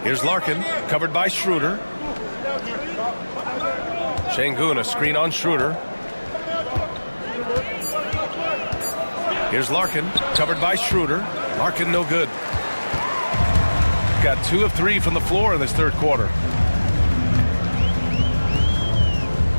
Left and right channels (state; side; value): inverted; both; correlation -1.00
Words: Here's Larkin, covered by Schroeder. Şengün, a screen on Schroeder. Here's Larkin, covered by Schroeder. Larkin no good. Got 2 of 3 from the floor in this third quarter.